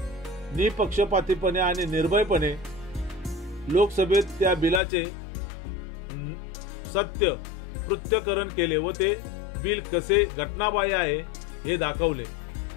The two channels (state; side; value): drops out; right; at 4.8 s